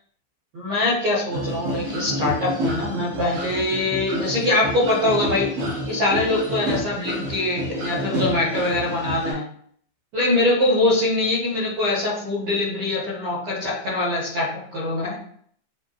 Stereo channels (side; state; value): left; late; 15 ms